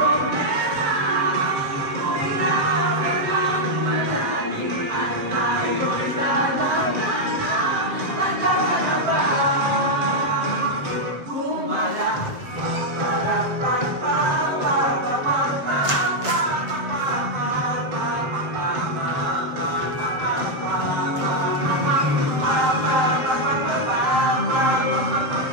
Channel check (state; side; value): late; left; 7.2 ms